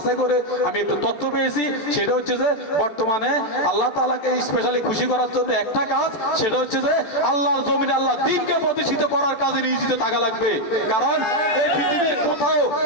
করে আমি একটু তথ্য পেয়েছি। সেটা হচ্ছে যে বর্তমানে আল্লাহ তাআলাকে স্পেশালি খুশি করার জন্য একটা কাজ, সেটা হচ্ছে যে আল্লাহর জমিনে আল্লাহর দ্বীনকে প্রতিষ্ঠিত করার কাজে নিয়োজিত থাকা লাগবে। কারণ এই পৃথিবীর কোথাও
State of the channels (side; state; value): right; late; 14 ms